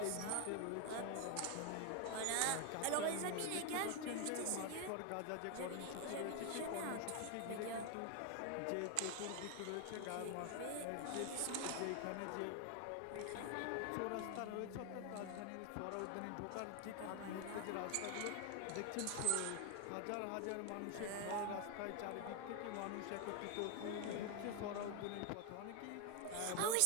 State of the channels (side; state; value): both; different; correlation 0.01